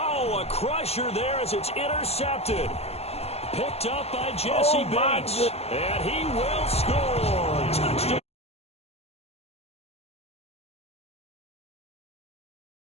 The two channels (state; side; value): late; right; 0.30 ms